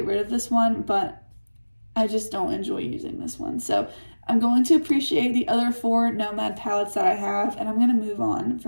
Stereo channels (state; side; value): inverted; both; correlation -1.00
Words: rid of this one, but I just don't enjoy using this one. So I'm going to appreciate the other 4 Nomad palettes that I have, and I'm going to move on